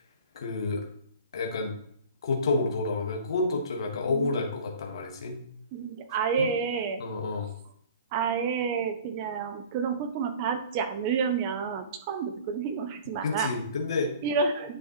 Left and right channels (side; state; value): both; inverted; correlation -0.43